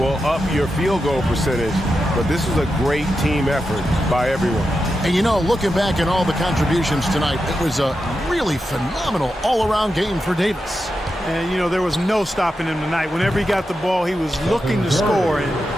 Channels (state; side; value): normal; both; correlation 0.89